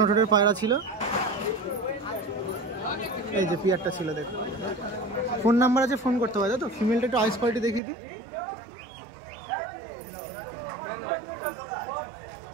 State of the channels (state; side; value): drops out; left; at 7.8 s